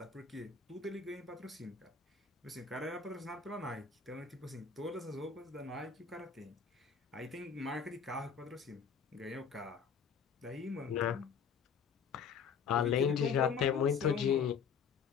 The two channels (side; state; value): right; quieter; 6.5 dB